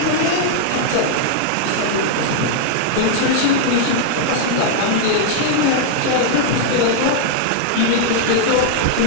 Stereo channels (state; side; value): different; both; correlation 0.00